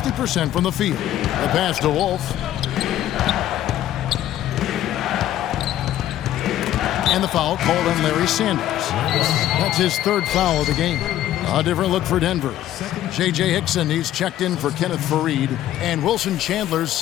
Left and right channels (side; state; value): right; quieter; 12.7 dB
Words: from the field. The pass to Wolf. And the foul called on Larry Sanders. That's his third foul of the game. A different look for Denver. J.J. Hickson, he's checked in for Kenneth Fareed. And Wilson Chandler's